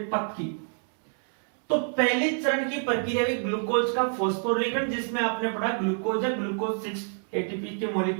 पथ की। तो पहले चरण की प्रक्रिया हुई ग्लूकोज का फॉस्फोरीकरण, जिसमें आपने पढ़ा ग्लूकोज या ग्लूकोज 6 ATP के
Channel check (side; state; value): left; silent; 60 dB below the other